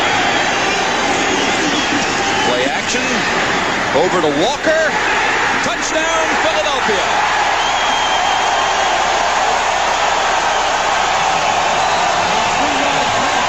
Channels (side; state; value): both; identical; correlation 1.00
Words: Over to Walker. Touchdown, Philadelphia.